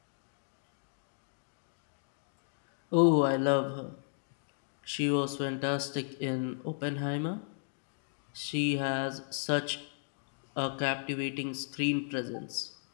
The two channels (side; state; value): right; silent; digital silence